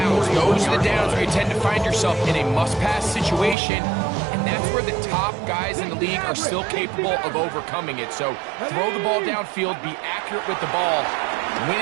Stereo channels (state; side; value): drops out; left; at 3.6 s